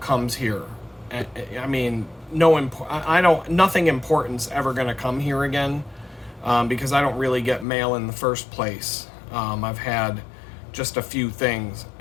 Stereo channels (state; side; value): drops out; right; at 7.7 s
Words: here. I mean, nothing important's ever going to come here again, because I don't really get mail in the first place. I've had just a few things,